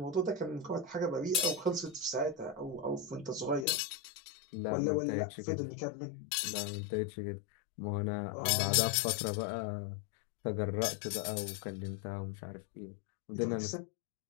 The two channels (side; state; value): right; drops out; at 3.7 s